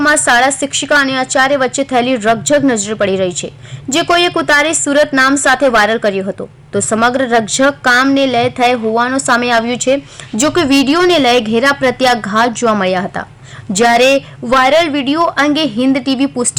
શાળા શિક્ષિકા અને આચાર્ય વચ્ચે થયેલી રકઝક નજરે પડી રહી છે, જે કોઈએ ઉતારી સુરત નામ સાથે વાયરલ કર્યો હતો। તો સમગ્ર રકઝક કામને લઈ થઈ હોવાનું સામે આવ્યું છે। જો કે વિડીયોને લઈ ઘેરા પ્રત્યાઘાત જોવા મળ્યા હતા, જ્યારે વાયરલ વિડીયો અંગે હિન્દ ટીવી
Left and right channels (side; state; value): both; identical; correlation 1.00